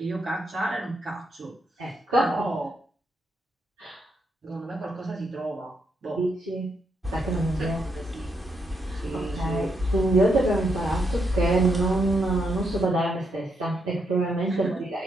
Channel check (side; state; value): both; normal; correlation 0.79